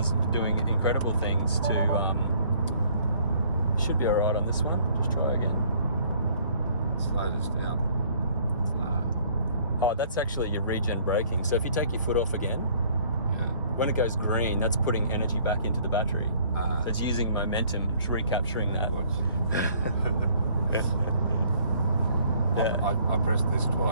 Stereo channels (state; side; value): inverted; both; correlation -0.59